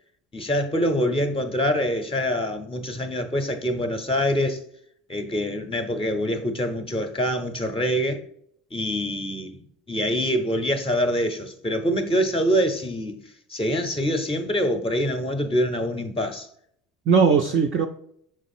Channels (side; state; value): both; normal; correlation 0.47